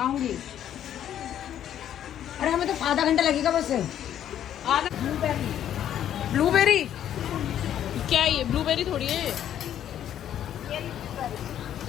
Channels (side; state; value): right; quieter; 10.6 dB